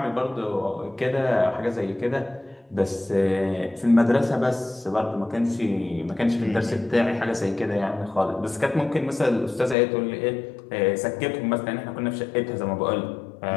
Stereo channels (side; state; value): right; drops out; at 9.8 s